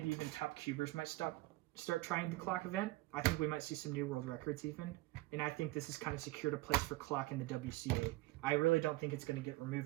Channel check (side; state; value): left; quieter; 20.0 dB